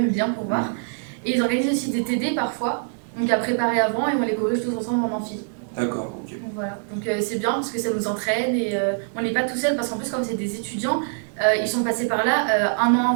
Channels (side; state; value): left; silent; digital silence